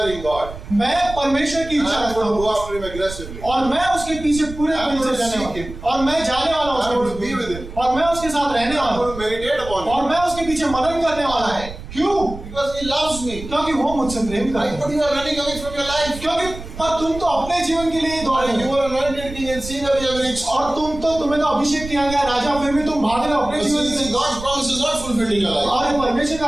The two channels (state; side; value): noise; right; rumble, 12 dB below the sound